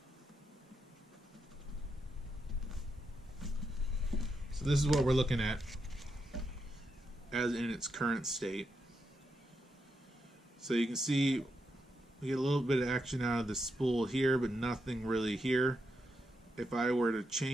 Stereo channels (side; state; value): both; normal; correlation 0.83